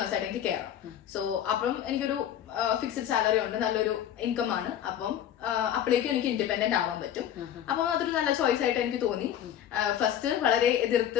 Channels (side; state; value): right; quieter; 10.4 dB